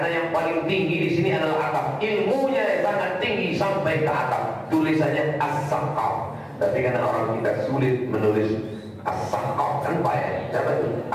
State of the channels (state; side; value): identical; both; correlation 1.00